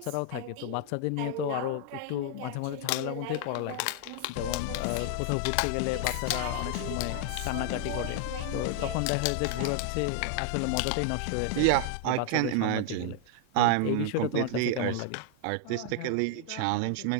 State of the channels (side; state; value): both; different; correlation 0.00